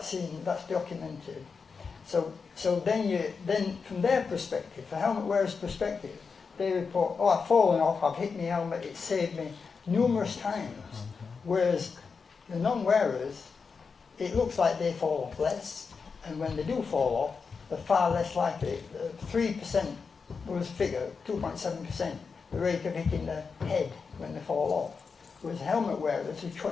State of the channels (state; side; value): quieter; right; 5.2 dB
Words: So then from their perspective, the helmet wearer's perspective, they report, oh, I've fallen off, I've hit my helmet, it saved me numerous times. Whereas the non-wearers, it looks like they fall off less, and when they do fall off, they're far less likely. 3% was a figure, 2.7%, the rate of hitting the head when they fall off. Whereas helmet wearers is